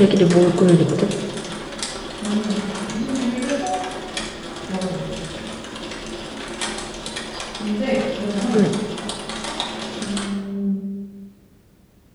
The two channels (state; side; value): identical; both; correlation 1.00